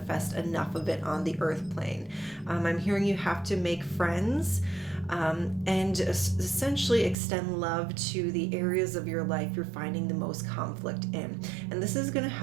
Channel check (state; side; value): drops out; left; at 7.2 s